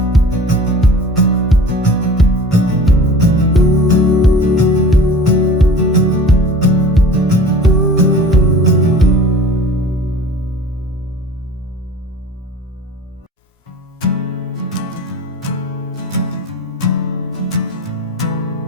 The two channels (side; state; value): both; normal; correlation 0.41